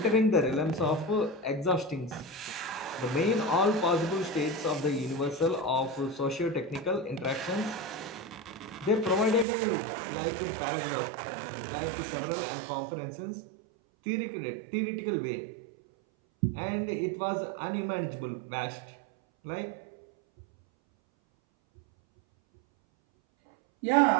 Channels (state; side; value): drops out; left; at 9.5 s